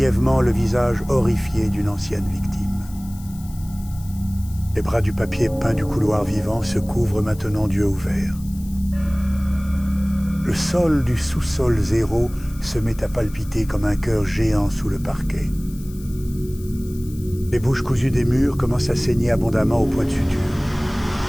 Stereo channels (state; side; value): noise; left; hiss, 21 dB below the sound